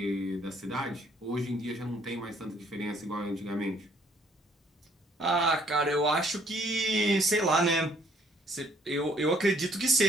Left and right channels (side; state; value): both; normal; correlation 0.64